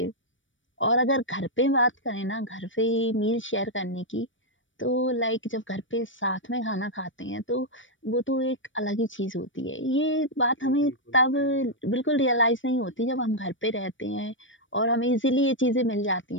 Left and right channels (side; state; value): right; late; 0.56 ms